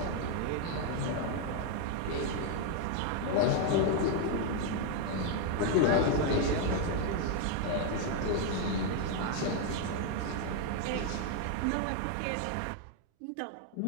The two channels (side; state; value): both; different; correlation 0.00